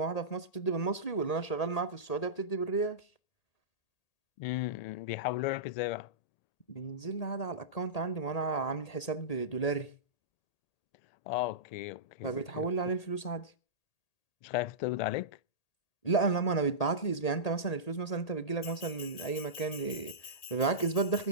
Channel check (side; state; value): right; late; 1.8 ms